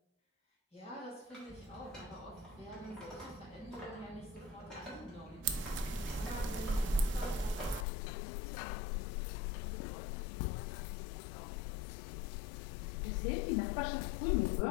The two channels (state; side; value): drops out; right; at 7.9 s